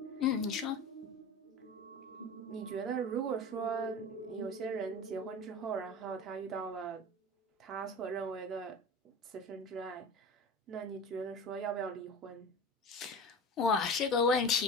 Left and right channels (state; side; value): normal; both; correlation 0.32